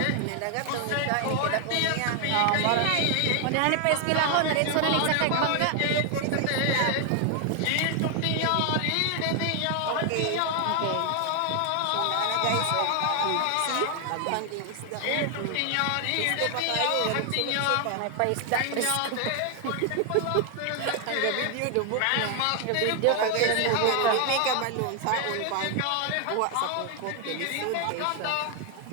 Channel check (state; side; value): different; both; correlation 0.00